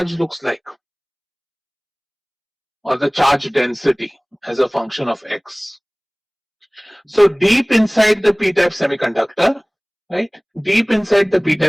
looks like, or the charge density as a function of x. So deep inside the p-type semiconductor, right? Deep inside the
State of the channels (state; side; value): identical; both; correlation 1.00